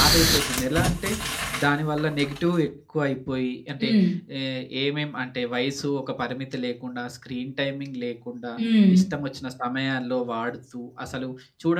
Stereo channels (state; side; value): identical; both; correlation 1.00